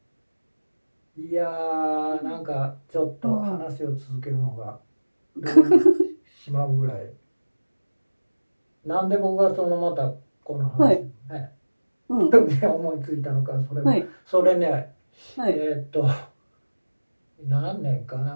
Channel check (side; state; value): both; inverted; correlation -1.00